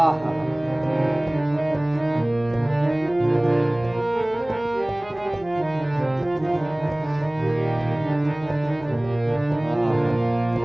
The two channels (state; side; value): noise; left; hum, 22 dB below the sound